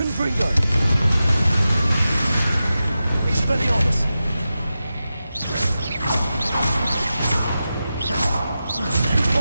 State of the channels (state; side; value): inverted; both; correlation -0.92